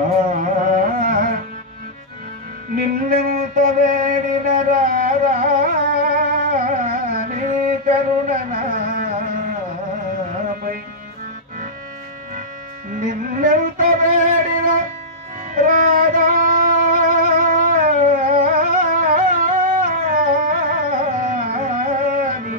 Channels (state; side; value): normal; both; correlation -0.13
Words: నిన్నెంత వేడిన రారా నీ కరుణనాపై నిన్నెంత వేడిన రారా నీ